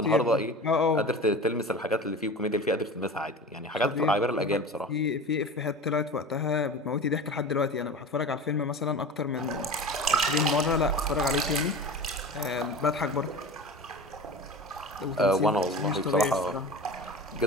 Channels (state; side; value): normal; both; correlation 0.33